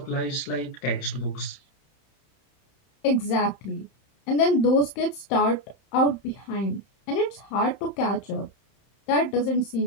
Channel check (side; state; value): right; late; 31 ms